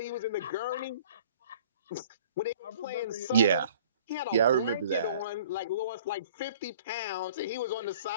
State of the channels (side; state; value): both; inverted; correlation -0.51